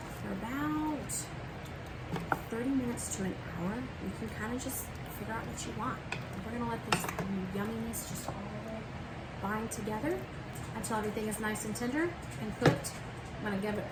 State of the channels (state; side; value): identical; both; correlation 1.00